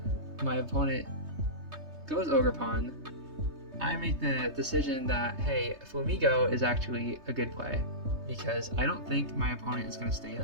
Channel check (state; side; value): late; left; 3.3 ms